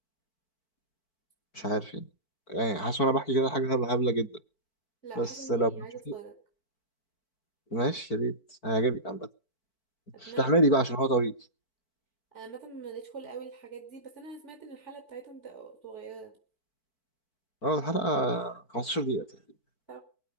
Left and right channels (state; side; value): late; right; 4.5 ms